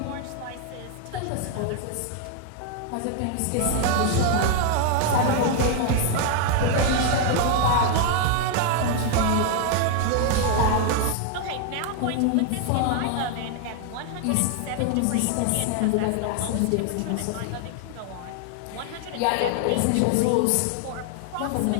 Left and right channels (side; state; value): both; different; correlation 0.00